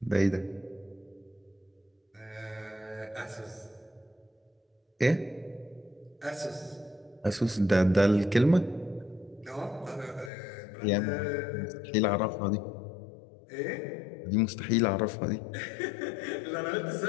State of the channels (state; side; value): drops out; right; at 10.3 s